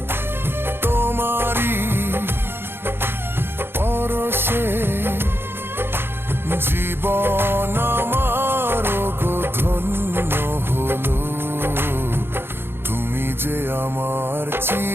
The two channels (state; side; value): late; left; 0.11 ms